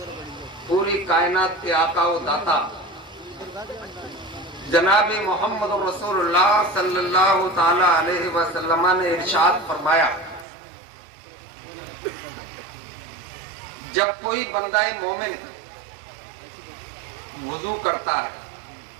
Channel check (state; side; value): drops out; left; at 10.5 s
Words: پوری کائنات کے آقا و داتا جناب محمد رسول اللہ صلی اللہ تعالی علیہ وسلم نے ارشاد فرمایا، جب کوئی بندہ مومن وضو کرتا ہے